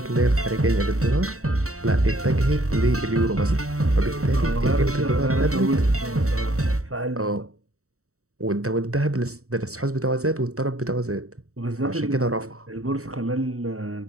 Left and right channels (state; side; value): late; left; 0.64 ms